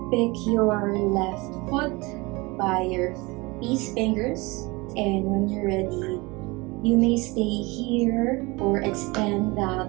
pick your left foot by your peace fingers. And when you're ready, you may stay here or extend that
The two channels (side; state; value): left; quieter; 24.5 dB